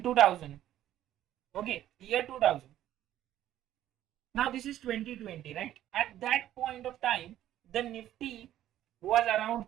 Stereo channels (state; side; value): quieter; left; 12.5 dB